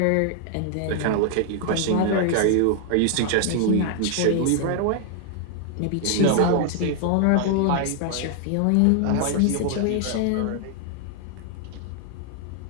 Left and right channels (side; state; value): both; different; correlation 0.00